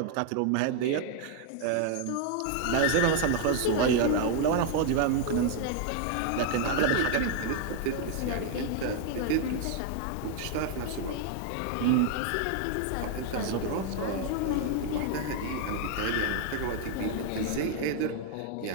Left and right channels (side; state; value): both; different; correlation 0.00